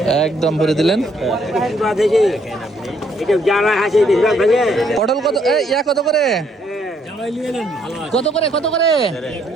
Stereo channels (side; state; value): both; normal; correlation 0.69